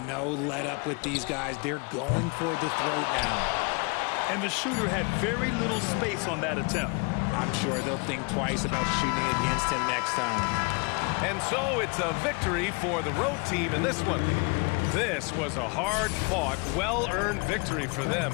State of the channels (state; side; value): quieter; right; 31.8 dB